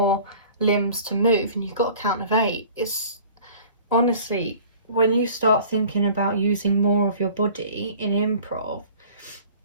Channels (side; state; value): both; inverted; correlation -0.47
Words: limbs to move and you've got a count of 8. It's honestly, when you start thinking about using more of your body in improv,